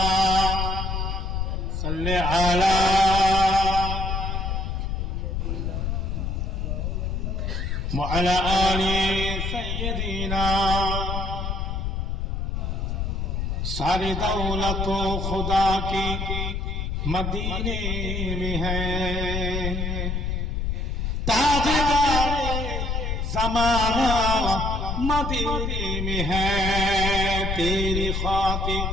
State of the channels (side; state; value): left; noise; rumble, 1 dB below the sound